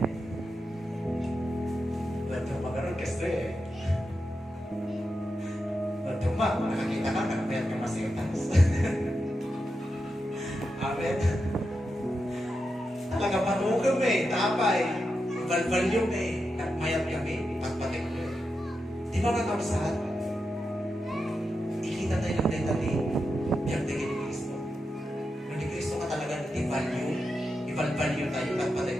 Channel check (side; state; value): both; normal; correlation 0.88